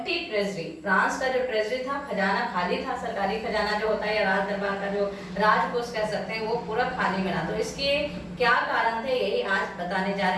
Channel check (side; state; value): both; identical; correlation 1.00